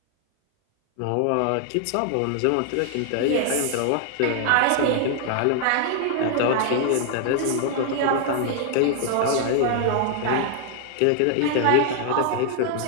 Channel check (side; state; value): both; different; correlation 0.00